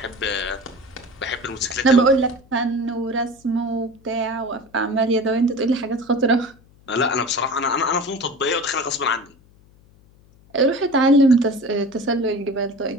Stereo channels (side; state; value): left; noise; hum, 29 dB below the sound